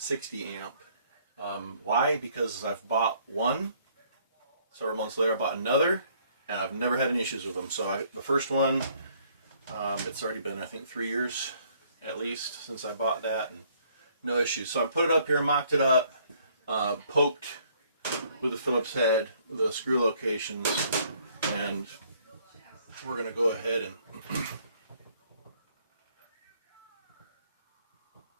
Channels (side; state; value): both; inverted; correlation -0.63